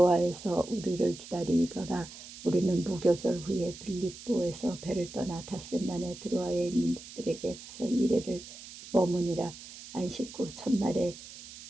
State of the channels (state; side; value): noise; right; hiss, 15 dB below the sound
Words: 우리를 기다리더라. 우리는 무교절 후에 빌립보에서 배를 떠나 닷새만에 드로아에 있는 들에게 가서 이래를 머무니라. 안식 후 첫날에